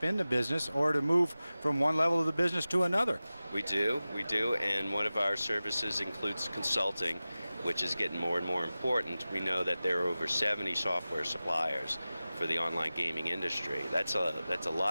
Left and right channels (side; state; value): both; inverted; correlation -0.96